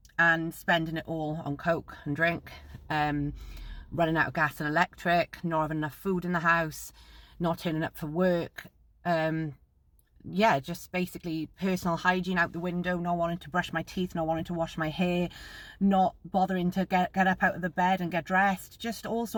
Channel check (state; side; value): identical; both; correlation 1.00